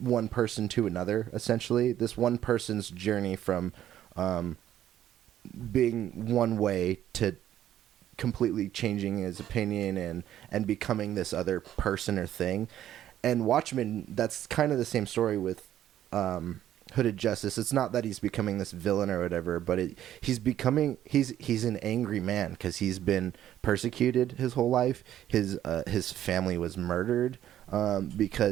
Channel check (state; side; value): quieter; left; 11.7 dB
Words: person to another, essentially. This one person's journey from being one way to completely changing his opinion and becoming this other person or thing. And Watchmen, that's kind of the same story with Hooded Justice. It's not that he's becoming this villain or whatever, but he's an angry man because he's been persecuted his whole life. His family was murdered